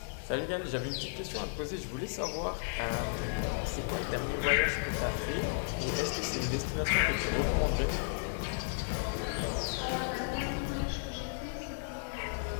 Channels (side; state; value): right; silent; 55 dB below the other